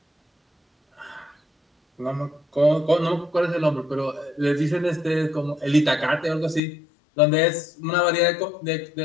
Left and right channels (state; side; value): drops out; right; at 6.6 s